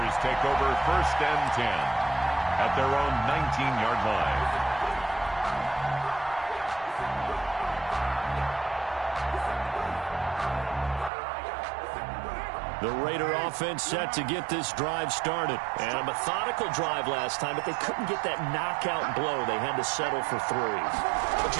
take over first and 10 at their own 19-yard line. The Raider offense set to get this drive started. And a methodical drive last time, but they couldn't get that knockout blow. They had to settle for 3. But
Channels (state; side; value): drops out; left; at 11.1 s